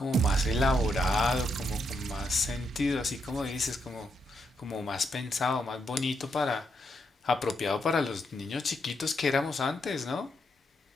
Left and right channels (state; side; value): normal; both; correlation 0.79